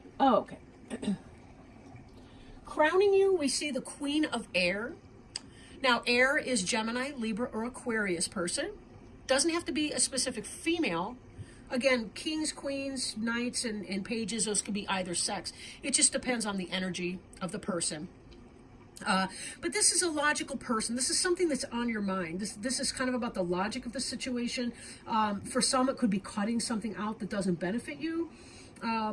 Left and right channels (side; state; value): both; identical; correlation 1.00